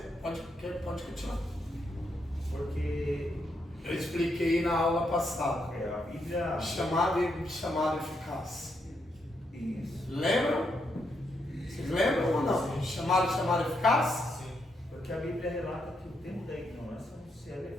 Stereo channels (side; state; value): both; normal; correlation 0.79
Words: pode continuar. Porque Eu expliquei na aula passada. a Bíblia. Chamado eficaz. Isso. Lembram? Vocês lembram ou não? Chamado eficaz? Sim. Porque a Bíblia relata que o tempo da ignorância não se é